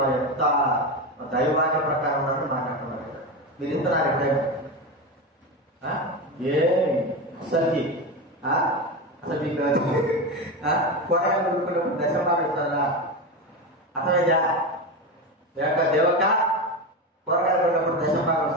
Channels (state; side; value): normal; both; correlation 0.18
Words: వారి ఎంత దైవాన్ని ప్రకారం మాట్లాడుతున్నారు. మీరు ఇస్తున్నారు ఎప్పుడైనా? అసలు మీకు కూరగాయలు కొనుక్కున్నప్పుడు దశమాలు ఇస్తారా? అసలు దేవక కూరగాయలు కొన్నప్పుడు దశమాలు